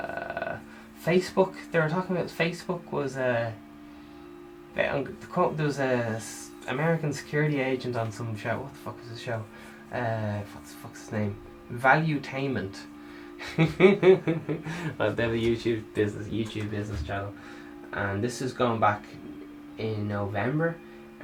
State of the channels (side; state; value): both; identical; correlation 1.00